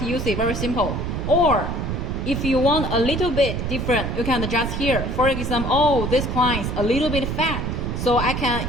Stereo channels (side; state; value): right; noise; rumble, 2 dB below the sound